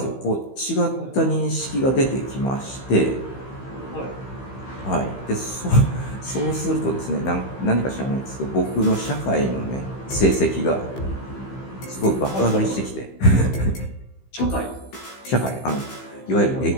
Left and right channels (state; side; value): late; right; 15 ms